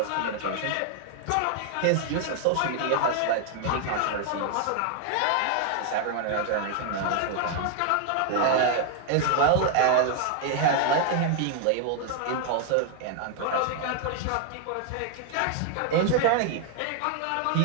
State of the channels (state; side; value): different; both; correlation 0.00